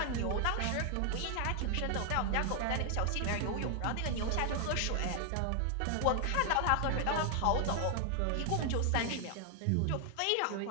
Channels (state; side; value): different; both; correlation 0.00